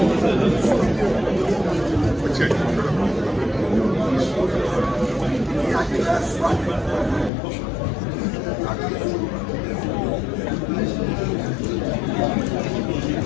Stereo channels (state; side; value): drops out; right; at 7.3 s